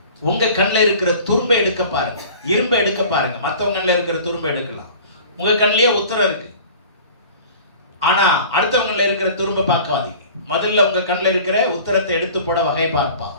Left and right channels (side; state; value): both; inverted; correlation -0.44